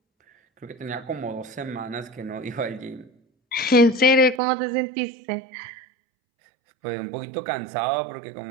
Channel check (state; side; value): drops out; left; at 4.4 s